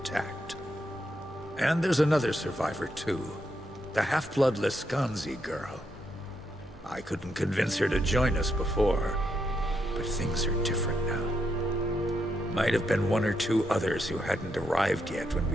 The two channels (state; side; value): normal; both; correlation 0.80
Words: And there's another survivor, too. The half-blood Lescanzi girl. I couldn't convince her to join us before, but things are different now. Might have been one or two others who hadn't arrived yet when